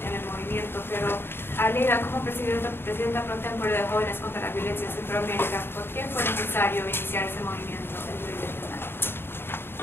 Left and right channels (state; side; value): late; right; 0.11 ms